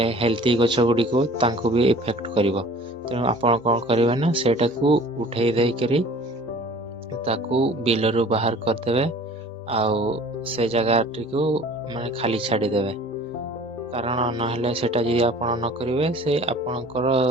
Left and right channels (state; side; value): normal; both; correlation 0.47